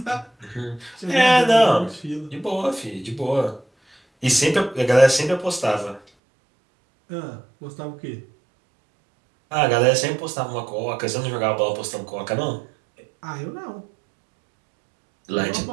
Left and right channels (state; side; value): drops out; left; at 6.0 s